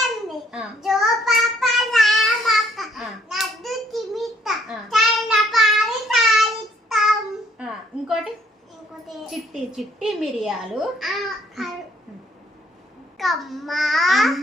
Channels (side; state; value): both; normal; correlation 0.65